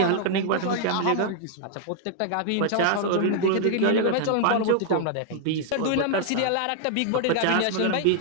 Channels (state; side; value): different; both; correlation 0.00